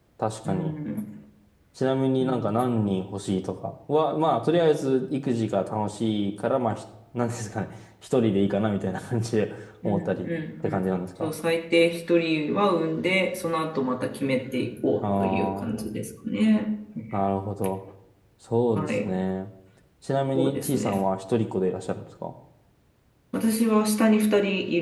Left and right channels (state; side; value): identical; both; correlation 1.00